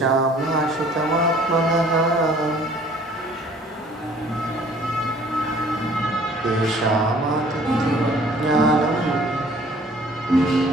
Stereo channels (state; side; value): normal; both; correlation 0.55